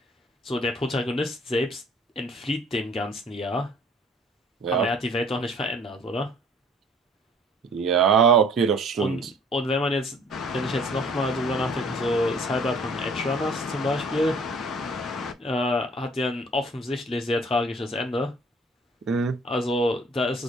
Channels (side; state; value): both; normal; correlation 0.55